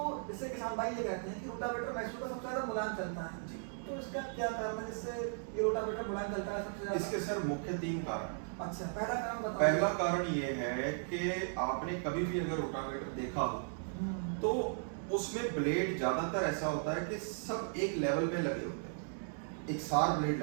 इससे किसान भाई ये कहते हैं कि रोटावेटर मैक्सो का सबसे ज्यादा मुलायम चलता है, जी। तो इसका क्या कारण है जिससे ये रोटावेटर मुलायम चलता है सबसे ज्यादा? इसके सर मुख्य 3 कारण हैं। अच्छा, पहला कारण बताओ। पहला कारण ये है कि आपने कभी भी अगर रोटावेटर देखा हो तो उसमें ब्लेड ज्यादातर ऐसा होता है कि सब एक लेवल में लगे होते हैं, एक सार ब्लेड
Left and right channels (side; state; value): left; silent; digital silence